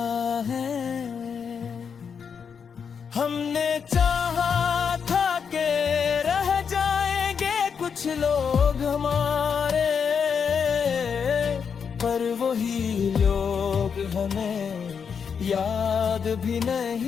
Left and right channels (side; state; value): right; quieter; 6.6 dB